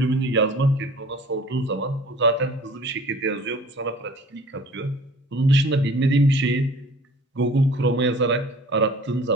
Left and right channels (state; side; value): normal; both; correlation 0.47